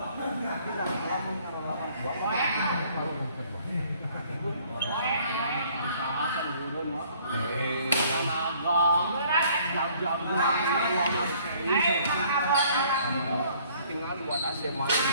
kita kalau mengarah tua baru kedua usahakan turun mah tinggal buat AC main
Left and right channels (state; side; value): inverted; both; correlation -0.59